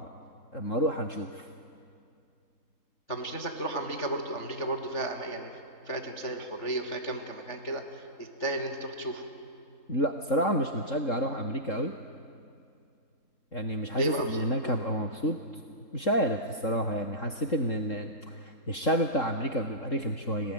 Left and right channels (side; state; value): right; late; 3.7 ms